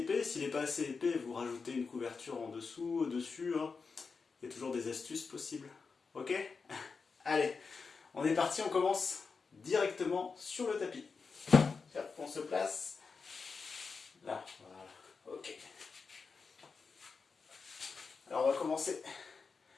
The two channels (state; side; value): quieter; right; 4.9 dB